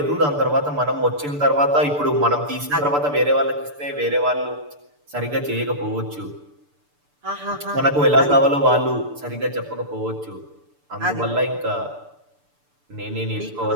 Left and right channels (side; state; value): left; late; 6.8 ms